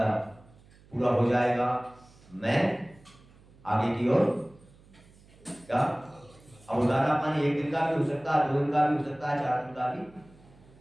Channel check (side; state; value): right; noise; hum, 26 dB below the sound